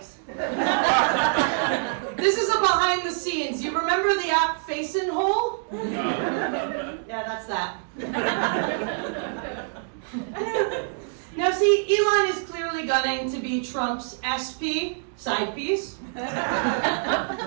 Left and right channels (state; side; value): silent; left; digital silence